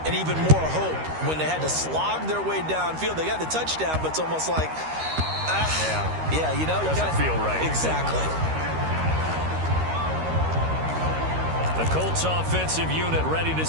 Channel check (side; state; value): left; late; 13 ms